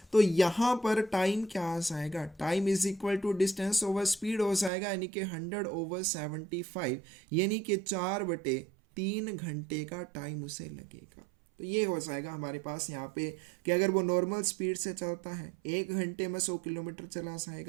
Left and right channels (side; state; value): left; drops out; at 4.7 s